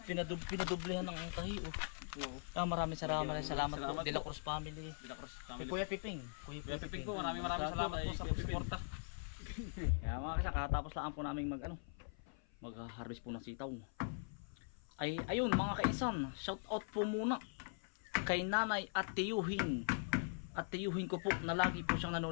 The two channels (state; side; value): silent; right; 50 dB below the other